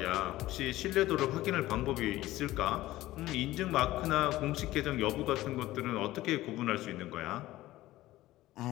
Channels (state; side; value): quieter; right; 16.4 dB